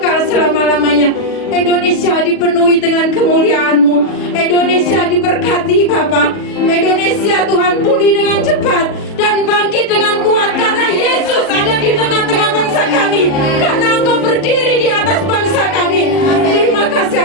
selama-lamanya. Indonesia dipenuhi dengan kemuliaan-Mu. Indonesia diberkati Bapa. Indonesia Tuhan pulih dengan cepat dan bangkit dengan kuat karena Yesus ada di tengah-tengah bangsa kami. Karena Engkau berdiri di atas bangsa kami. Terima kasih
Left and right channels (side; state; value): right; late; 40 ms